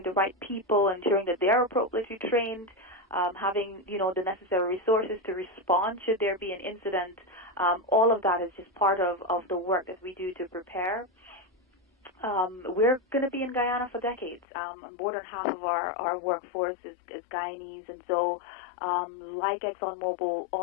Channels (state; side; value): drops out; right; at 14.5 s